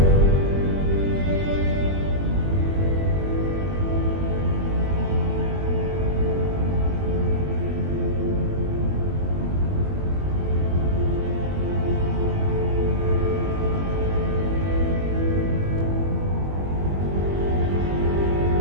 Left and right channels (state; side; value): late; left; 21 ms